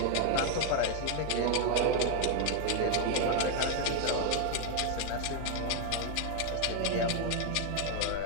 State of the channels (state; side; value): different; both; correlation 0.00